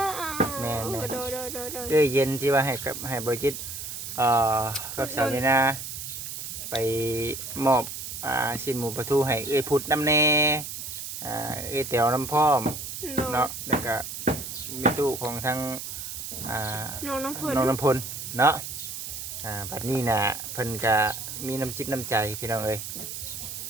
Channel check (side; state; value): right; noise; hiss, 7 dB below the sound